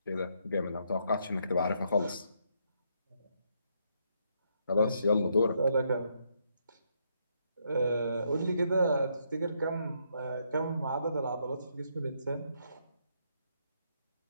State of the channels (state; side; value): inverted; both; correlation -0.75